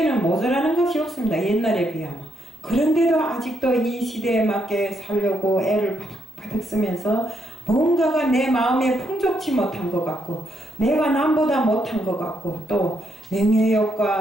모자라는 것이 없습니다. 옛날에 비하면. 그런데도 아직도 이 시대에 맞게 살려고 애를 바득바득 쓰면서 뭔가가 내 마음에 풍족치 못한 것 같고 내가 남보다 못한 것 같고 또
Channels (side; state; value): both; normal; correlation 0.77